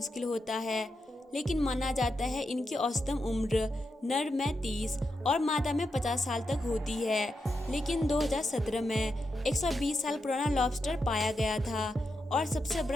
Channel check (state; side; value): normal; both; correlation 0.86